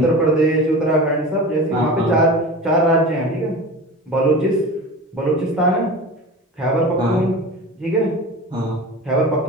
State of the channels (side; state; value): both; normal; correlation 0.33